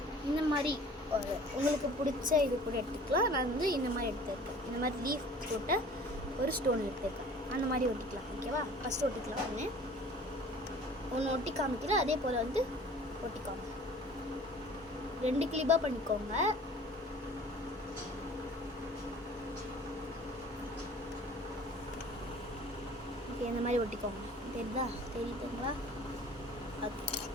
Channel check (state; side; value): normal; both; correlation 0.47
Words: இந்த மாதிரி ஒரு உங்களுக்கு பிடிச்ச இது கூட எடுத்துக்கலாம். நான் வந்து இந்த மாதிரி எடுத்துருக்கேன். இந்த மாதிரி லீஃப் போட்ட ஒரு ஸ்டோன் எடுத்துருக்கேன். அந்த மாதிரி ஒட்டிக்கலாம். ஓகேவா? ஃபஸ்ட்டு ஒட்டிக்கலாம். ஒன்று ஒட்டி காமிக்கலாம். அதே போல் வந்து ஒட்டிக்காம 2 கிளிப்பாக பண்ணிக்கோங்க. இந்த மாதிரி ஒட்டிக்கோங்க. தெரியுதுங்களா? ஓகே,